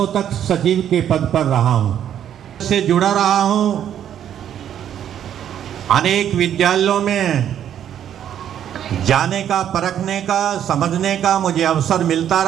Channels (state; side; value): quieter; left; 10.0 dB